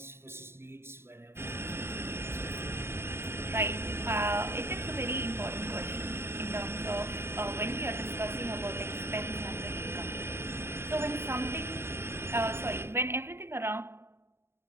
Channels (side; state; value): left; late; 0.12 ms